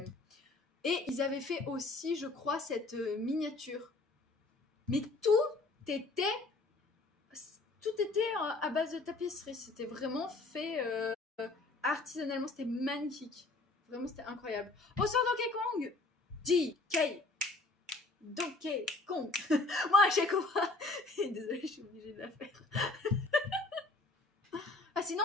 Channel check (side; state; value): right; quieter; 3.3 dB